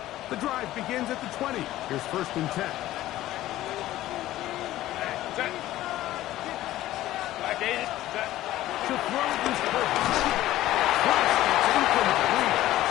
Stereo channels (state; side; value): quieter; right; 14.9 dB